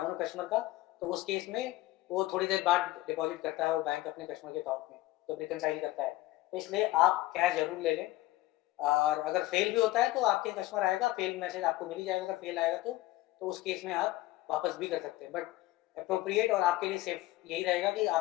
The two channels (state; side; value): quieter; right; 17.3 dB